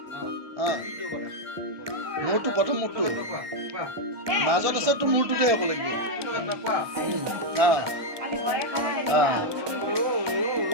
মোৰটো প্ৰথম মোৰটো মাজত আছে তোৰ মূৰটোতে হ'ব লাগিব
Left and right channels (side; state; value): left; late; 1.2 ms